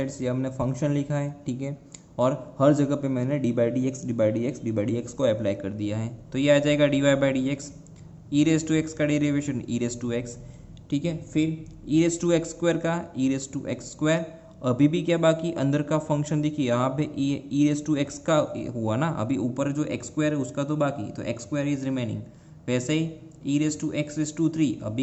ये हमने फंक्शन लिखा है। ठीक है, और हर जगह पे मैंने d by d x d by d x d by d x को अप्लाई कर दिया है। तो ये आ जाएगा d y by d x, e raise to x का derivation e raise to x, ठीक है। फिर e raise to x square का e raise to x square, अभी भी क्या बाकी अंदर का फंक्शन देखिए यहाँ पे ई रेस टू एक्स का हुआ ना, अभी ऊपर जो एक्स स्क्वायर है उसका तो बाकी, तो एक्स स्क्वायर इज रिमेनिंग। वैसे ही e raise to x raise to three,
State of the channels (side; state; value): both; identical; correlation 1.00